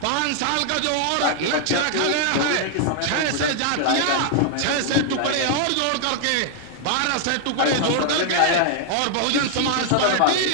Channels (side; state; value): both; different; correlation 0.00